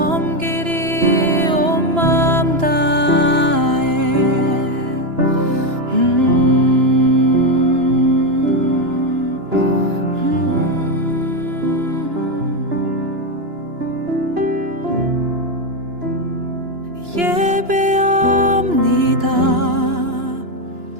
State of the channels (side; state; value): left; late; 2.9 ms